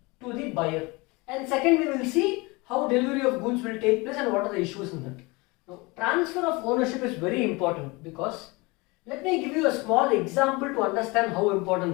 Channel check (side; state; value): right; quieter; 25.3 dB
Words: to the buyer? And second, we will see how delivery of goods will take place and what are the issues in that. Now, transfer of ownership is very important because let me give you a small example to understand how